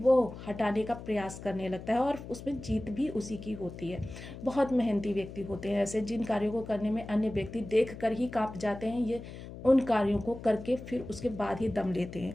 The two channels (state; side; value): noise; left; hum, 12 dB below the sound